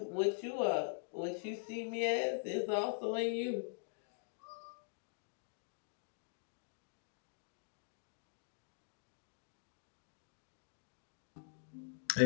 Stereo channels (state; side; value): silent; right; digital silence